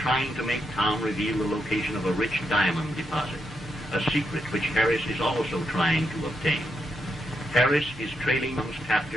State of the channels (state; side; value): normal; both; correlation 0.81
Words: to make Tom reveal the location of a rich diamond deposit, a secret which Harris is also trying to obtain. Harris is trailing those